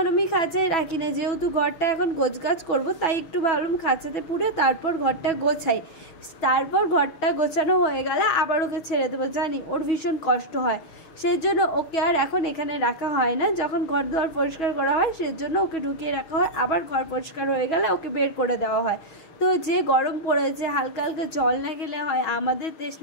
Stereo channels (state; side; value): late; right; 6.3 ms